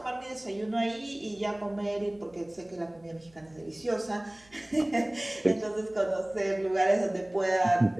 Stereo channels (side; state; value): right; noise; hum, 29 dB below the sound